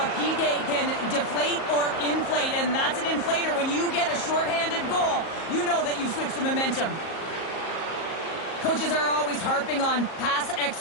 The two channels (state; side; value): late; right; 38 ms